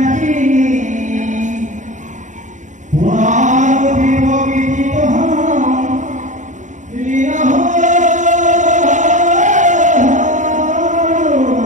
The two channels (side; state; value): left; late; 0.36 ms